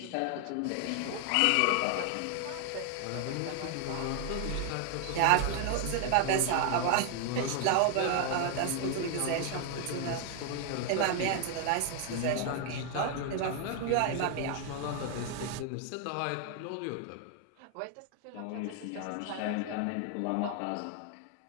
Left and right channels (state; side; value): different; both; correlation 0.00